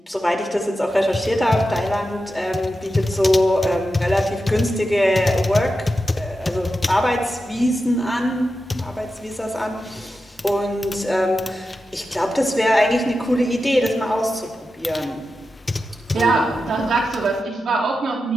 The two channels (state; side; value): normal; both; correlation 0.90